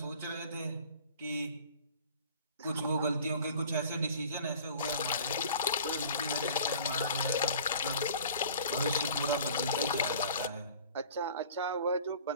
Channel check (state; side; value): inverted; both; correlation -0.46